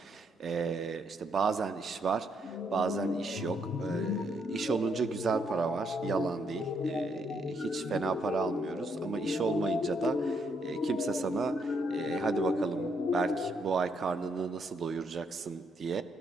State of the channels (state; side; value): normal; both; correlation 0.74